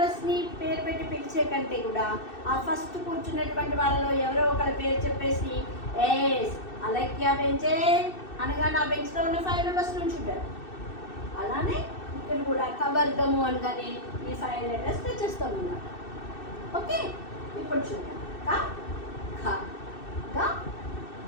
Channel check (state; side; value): late; right; 2.6 ms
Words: పేరు పెట్టి పిలిచే కంటే కూడా ఆ ఫస్ట్ కూర్చున్నటువంటి వాళ్ళలో ఎవరో ఒకరి పేరు చెప్పేసి ఎస్ అలక్య బెంచే అనగా నా బెంచ్లో ఉన్న 5 మెంబర్స్ నుంచి ఉంటారు. అలానే ఇక్కడ కూడా కవర్గము అనగానే ఈ 5 లెటర్స్ తెచ్చేస్తాం అన్నమాట. ఓకే, ఇప్పుడు చూద్దాం. క ఖ గ